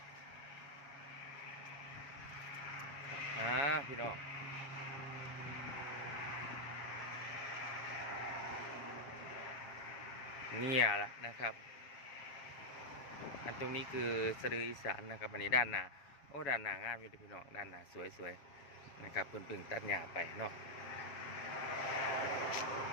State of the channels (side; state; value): right; late; 7.3 ms